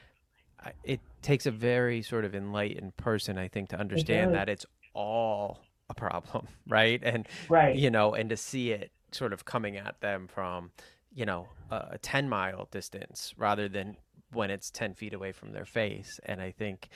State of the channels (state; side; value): identical; both; correlation 1.00